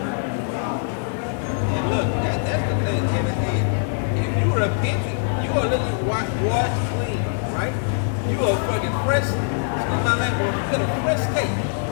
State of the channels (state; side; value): silent; right; 64 dB below the other